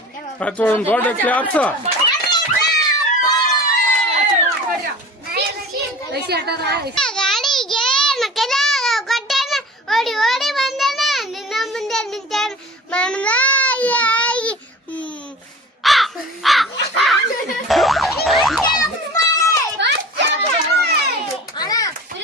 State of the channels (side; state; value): both; normal; correlation 0.39